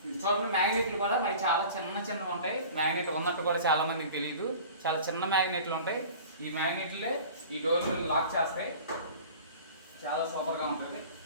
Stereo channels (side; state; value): both; inverted; correlation -0.41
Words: చూడండి మ్యాగ్నెట్లు కూడా మరి చాలా చిన్నవి ఉంటాయి. మ్యాగ్నెట్ ఉన్నట్టు కూడా చాలా మందికి తెలియదు, చాలా చిన్న మ్యాగ్నెట్లు ఉంటాయి. ఈ మ్యాగ్నెట్లే ఈ డోర్లు లాక్ చేస్తాయి. చాలా సూపర్గా ఉంటుంది.